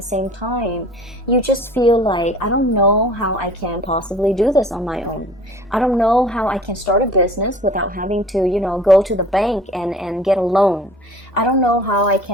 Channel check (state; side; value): normal; both; correlation 0.47